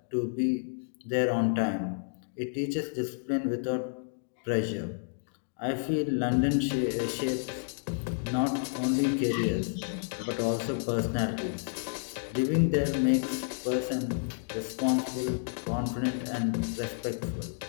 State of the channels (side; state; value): right; silent; digital silence